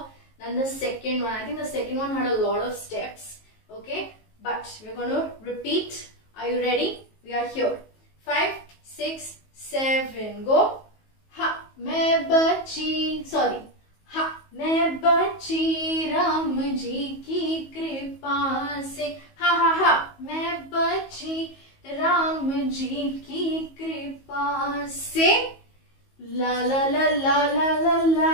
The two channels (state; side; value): late; right; 19 ms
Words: than the second one. I think the second one had a lot of steps. Okay, but we're going to repeat. Are you ready? We are here. 5, 6, 7, go. Ha, मैं बची, sorry. Ha, मैं बची राम जी की कृपा से. Ha ha ha, मैं बची राम जी की कृपा से. La la la la la la